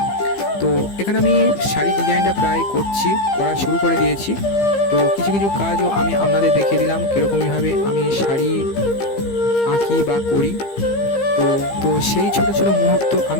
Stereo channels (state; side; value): late; right; 15 ms